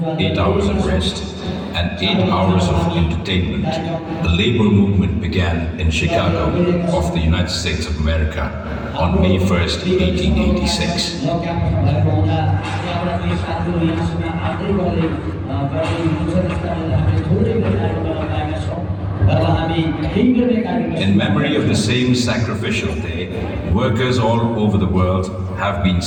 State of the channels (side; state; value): both; identical; correlation 1.00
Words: 8 hours of rest, and 8 hours of entertainment, the labor movement began in Chicago of the United States of America on May 1st, 1886. In memory of the same sacrificial day, workers all over the world have been